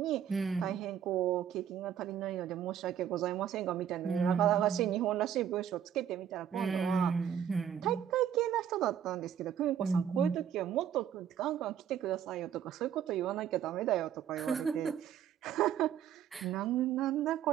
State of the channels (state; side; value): quieter; left; 9.2 dB